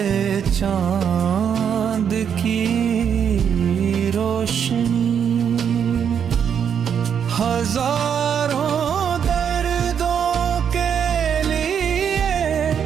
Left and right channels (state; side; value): quieter; left; 7.9 dB